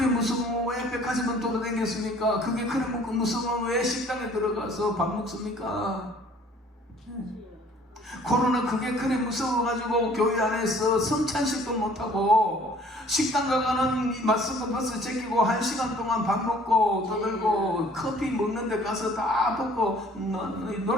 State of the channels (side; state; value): both; normal; correlation 0.55